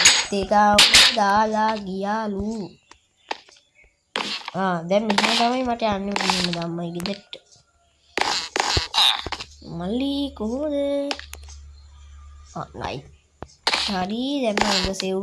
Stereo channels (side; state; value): both; identical; correlation 1.00